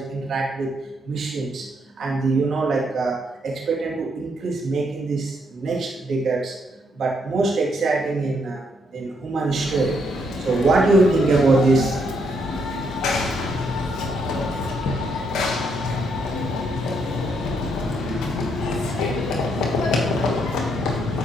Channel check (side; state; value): both; normal; correlation 0.75